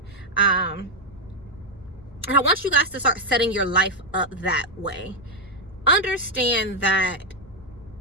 And I want you guys to start setting your life up that way. Understand that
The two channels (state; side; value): normal; both; correlation 0.00